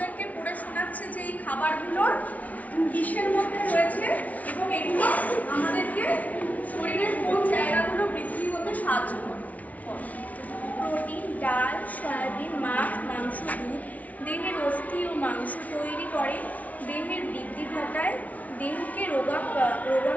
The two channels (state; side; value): late; right; 0.071 ms